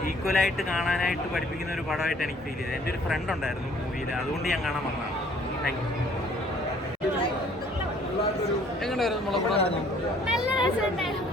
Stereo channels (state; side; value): normal; both; correlation 0.58